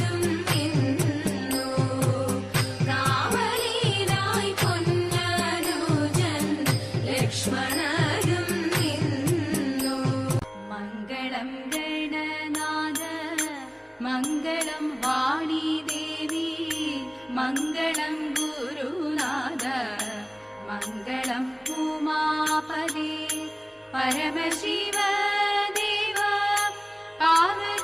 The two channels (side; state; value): both; identical; correlation 1.00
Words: നിന്നു കാവലിനായി പൊന്നനുജൻ ലക്ഷ്മണനും നിന്നു മംഗളം ഗണനാഥ മംഗളം വാണി ദേവി മംഗളം ഗുരുനാഥ മംഗളം ഉമാപദേ പരമശിവ ദേവ